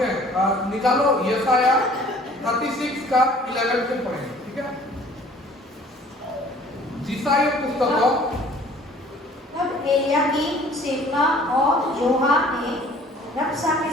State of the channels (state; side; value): normal; both; correlation 0.52